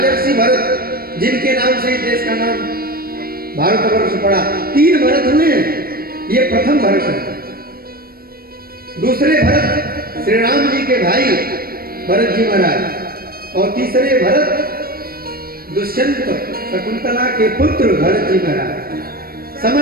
भरत, जिनके नाम से देश का नाम भारतवर्ष पड़ा। 3 भरत हुए हैं, ये प्रथम भरत है। दूसरे भरत श्री राम जी के भाई भरत जी महाराज, और तीसरे भरत दुष्यंत शकुंतला के पुत्र भरत जी महाराज।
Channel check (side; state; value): left; late; 0.44 ms